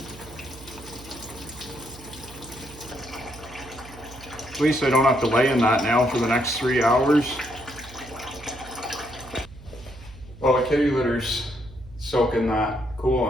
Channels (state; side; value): noise; right; hum, 18 dB below the sound